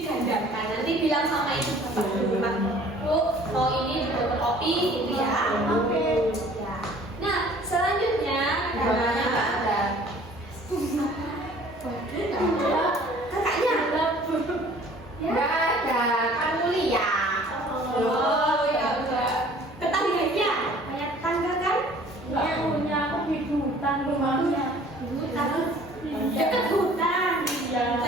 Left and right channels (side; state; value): both; normal; correlation 0.52